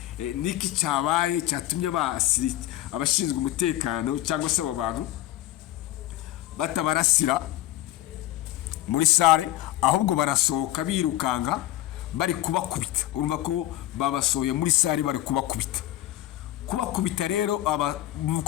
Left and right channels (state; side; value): quieter; right; 14.8 dB